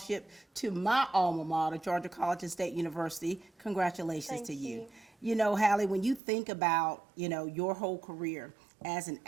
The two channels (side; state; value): left; drops out; at 6.2 s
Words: to my alma mater, Georgia College and State University. Congratulations to you. You know, Halley, when you think about, your whole career as an